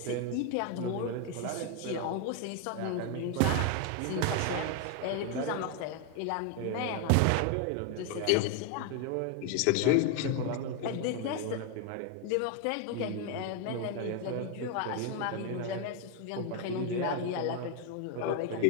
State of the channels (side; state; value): both; different; correlation 0.01